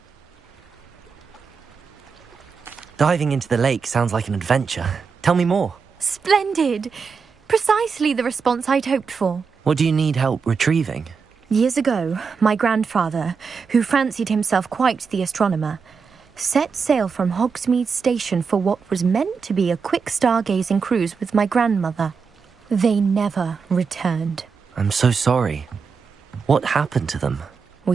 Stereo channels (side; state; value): left; quieter; 5.5 dB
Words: Diving into the lake sounds like an adventure. Tell me more. Splendid. Precisely the response I'd hoped for. What do you need help retrieving? Years ago, my grandfather, who fancied himself quite the astronomer, set sail from Hogsmeade Station for what was meant to be a quick stargazing cruise with my grandmother. They never returned. I'm so sorry. What happened to them?